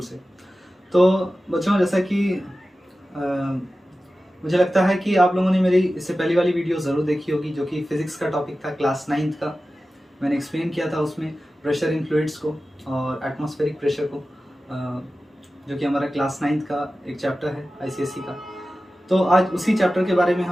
से। तो बच्चों, जैसा कि मुझे लगता है कि आप लोगों ने मेरी इससे पहली वाली वीडियो ज़रूर देखी होगी, जो कि फिज़िक्स का टॉपिक था, क्लास 9th का। मैंने एक्सप्लेन किया था उसमें प्रेशर इन फ्लूइड्स को और एटमॉस्फेरिक प्रेशर को, जो कि हमारा क्लास 9th का एक चैप्टर है आईसीएसई का। तो आज उसी चैप्टर के बारे में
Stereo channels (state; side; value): normal; both; correlation 0.94